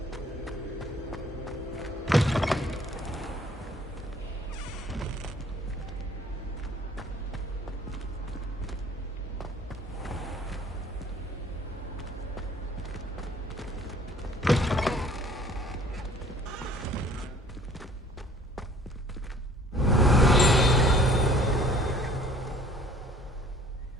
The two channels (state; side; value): normal; both; correlation 0.54